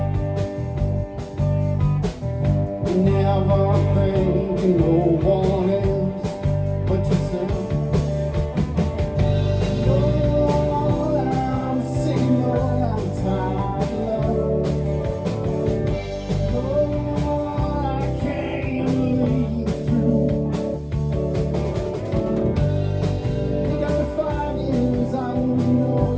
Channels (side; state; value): both; identical; correlation 1.00